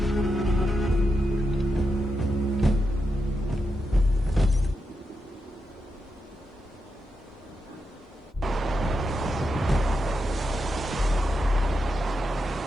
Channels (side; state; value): both; normal; correlation 0.86